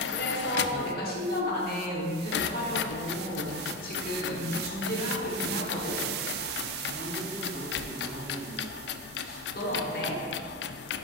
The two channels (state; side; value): normal; both; correlation 0.16